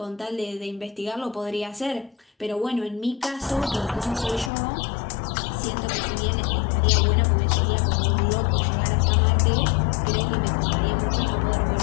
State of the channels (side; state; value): right; drops out; at 4.5 s